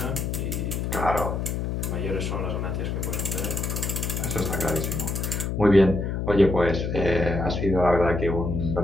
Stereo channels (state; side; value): noise; left; hum, 2 dB below the sound